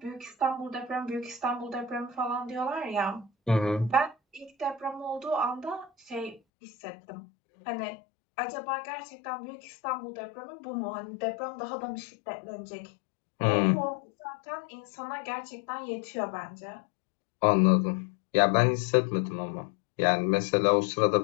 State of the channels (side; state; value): right; drops out; at 6.4 s